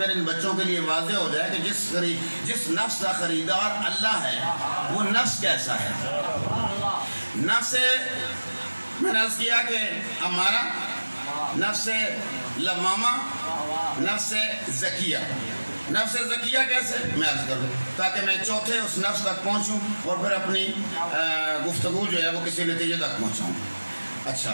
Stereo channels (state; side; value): inverted; both; correlation -1.00